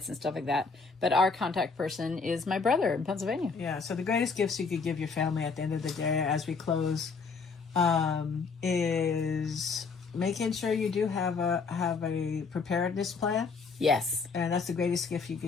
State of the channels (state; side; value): quieter; right; 4.8 dB